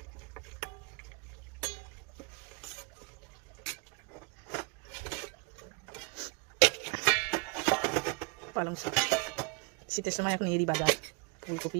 পালং শাক শীতের সময় এখন এরই বাজার।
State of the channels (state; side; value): quieter; left; 29.3 dB